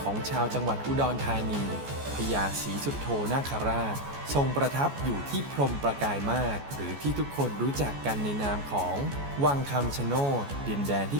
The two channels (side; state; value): left; late; 14 ms